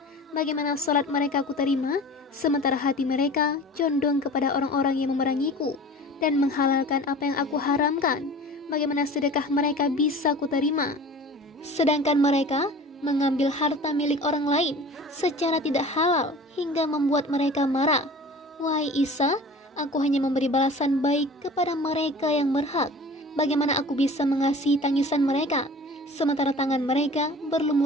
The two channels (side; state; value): both; normal; correlation 0.41